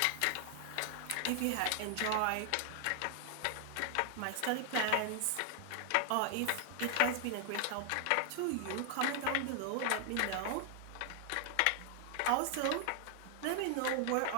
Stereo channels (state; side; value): different; both; correlation 0.00